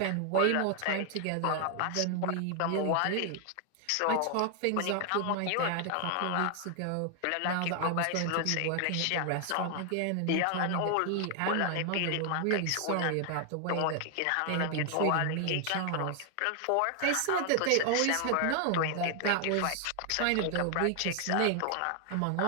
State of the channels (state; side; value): different; both; correlation 0.00